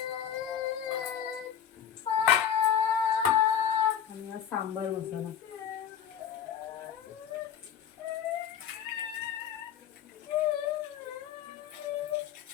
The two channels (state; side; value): quieter; right; 8.8 dB